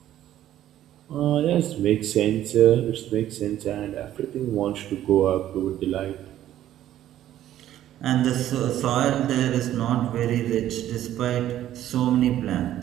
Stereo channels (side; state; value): left; quieter; 12.4 dB